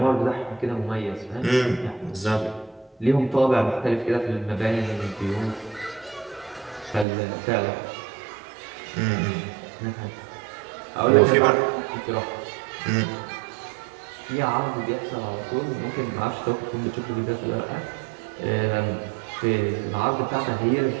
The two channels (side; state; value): left; drops out; at 7.1 s